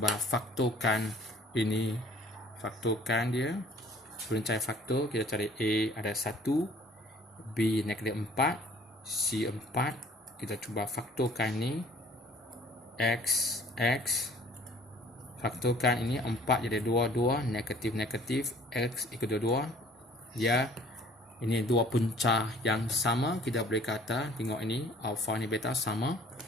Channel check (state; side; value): normal; both; correlation 0.54